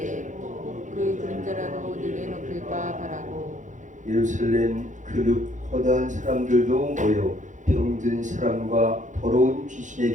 그 그림자라도 내게 높일까 바라고. 예루살렘 그룹 허다한 사람들도 모여 병든 사람과 더러운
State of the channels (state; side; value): late; left; 0.36 ms